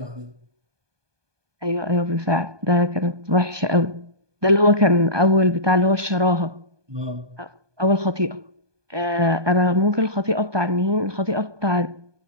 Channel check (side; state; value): left; late; 1.2 ms